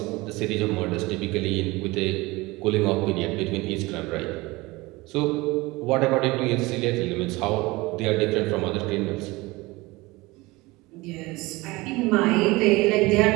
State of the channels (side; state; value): left; quieter; 22.0 dB